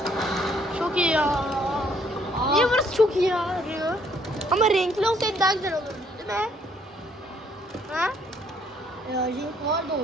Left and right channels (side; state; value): both; normal; correlation 0.66